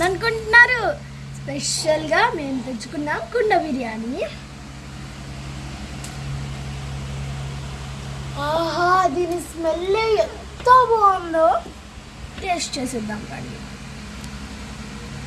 స్పెషల్గా మేము తెచ్చుకున్నాం కుండ బిర్యానీ. ఆహా, దీని స్మెల్ ఎంత బాగుందో, టేస్ట్ చేసేద్దాం కానీ.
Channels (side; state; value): both; identical; correlation 1.00